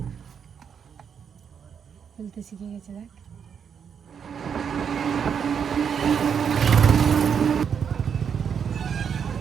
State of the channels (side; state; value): left; quieter; 7.3 dB